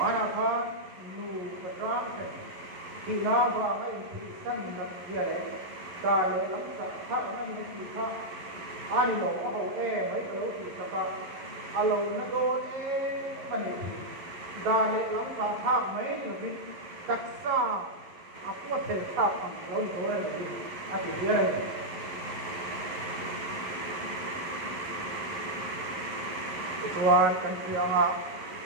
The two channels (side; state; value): left; late; 11 ms